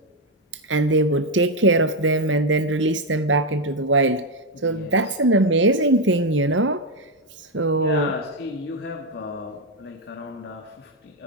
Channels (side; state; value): both; normal; correlation 0.05